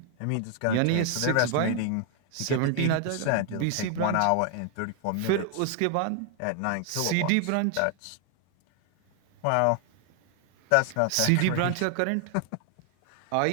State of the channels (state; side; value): different; both; correlation 0.00